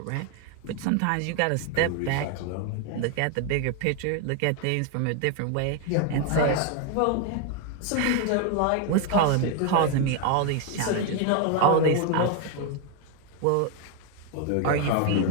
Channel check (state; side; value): different; both; correlation 0.01